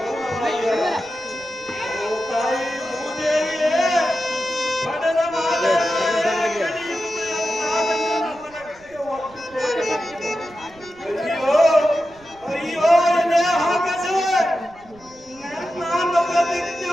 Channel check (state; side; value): noise; right; rumble, 26 dB below the sound